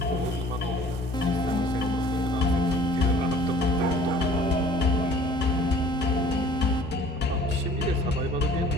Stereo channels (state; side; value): normal; both; correlation 0.51